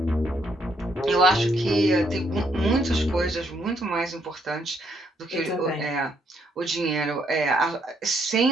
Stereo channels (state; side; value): normal; both; correlation 0.72